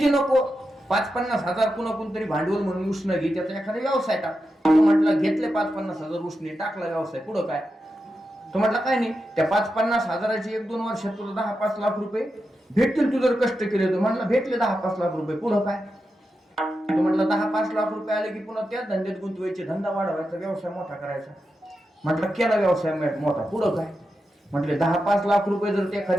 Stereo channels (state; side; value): normal; both; correlation 0.89